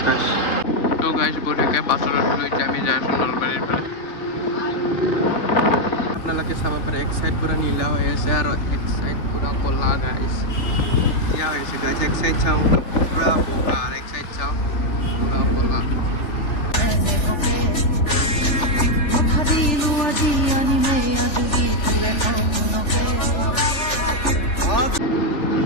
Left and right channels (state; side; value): late; right; 3.4 ms